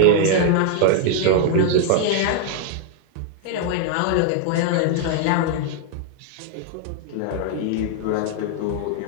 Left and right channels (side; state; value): both; different; correlation 0.00